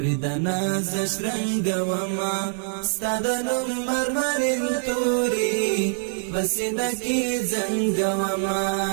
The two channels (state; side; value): silent; left; digital silence